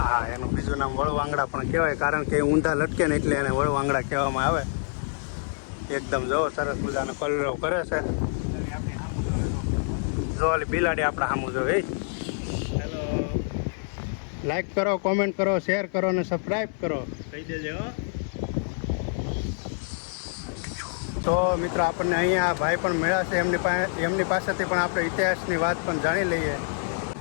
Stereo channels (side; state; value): right; silent; 61 dB below the other